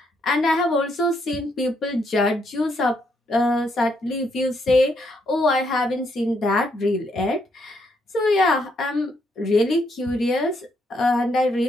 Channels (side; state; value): both; normal; correlation 0.75